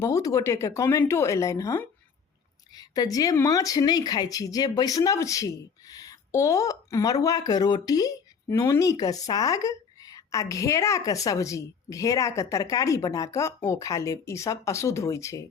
गोटेके कमेंटो अयलनि हँ। तऽ जे माछ नहि खाइ छी, जे वैष्णव छी, ओ मरुआके रोटी, नोनीके साग आ घेराके सब्जी, घेराके तरकारी बना कऽ ओ खा लेब, ईसब अशुद्ध होइ छै।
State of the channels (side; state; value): right; quieter; 6.2 dB